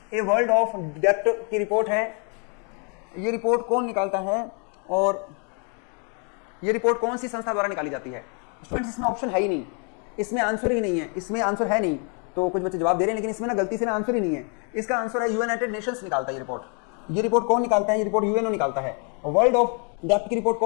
ए वर्ल्ड ऑफ डेप्थ की रिपोर्ट है। ये रिपोर्ट कौन निकालता है और ये रिपोर्ट कौन सी संस्था द्वारा निकाली जाती है? स्टूडेंट्स, इसमें ऑप्शन है ही नहीं, इसमें आंसर ही नहीं है। इसमें आंसर है नहीं, तो कुछ बच्चे जवाब दे रहे हैं, लेकिन इसमें ना गलती से ना आंसर ही नहीं है। इसका आंसर है यूनाइटेड नेशंस निकालता है ये रिपोर्ट। ये रिपोर्ट कौन निकालता है? ये रिपोर्ट यूएनओ निकालता है। वर्ल्ड ऑफ डेप्थ की रिपोर्ट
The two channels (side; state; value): right; quieter; 38.6 dB